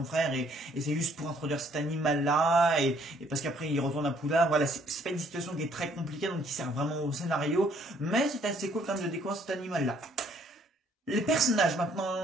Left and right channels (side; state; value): both; normal; correlation 0.64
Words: frère et c'est juste pour introduire cet animal là et parce qu'après il retourne à Poudlard. Voilà, c'est pas une situation qui est très compliquée, donc qui sert vraiment au scénario, mais c'est assez cool quand même de découvrir cet animal là. Les personnages